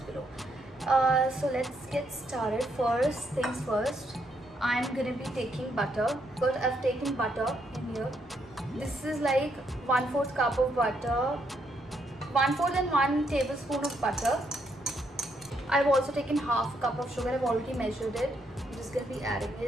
below. So let's get started. First things first, I'm going to be taking butter. But I've taken butter in here. This is like 1/4 cup of butter, 1/4 and 1 tablespoon of butter. I've also taken half a cup of sugar. I've already measured it. I'm just going to be adding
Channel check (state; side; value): normal; both; correlation 0.75